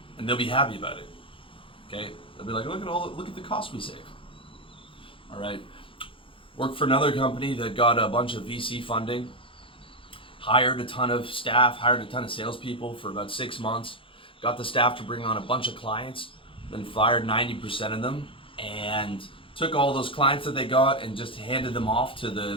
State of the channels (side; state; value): right; late; 0.25 ms